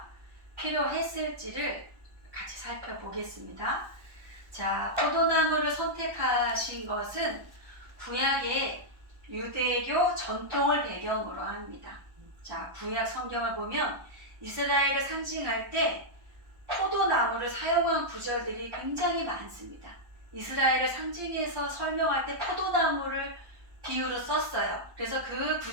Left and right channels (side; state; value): left; late; 1.1 ms